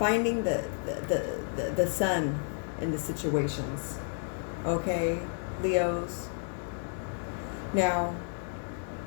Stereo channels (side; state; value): right; silent; digital silence